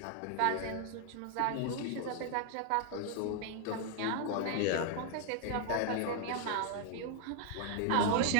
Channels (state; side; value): different; both; correlation 0.00